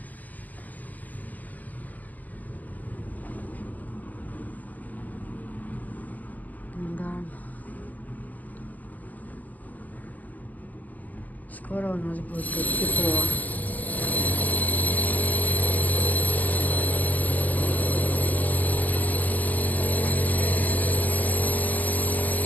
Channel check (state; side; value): late; right; 0.081 ms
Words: Да. Скоро у нас будет тепло.